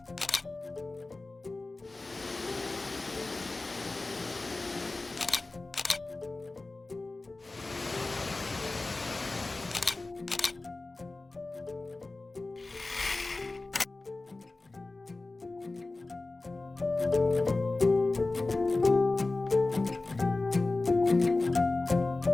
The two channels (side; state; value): right; quieter; 3.2 dB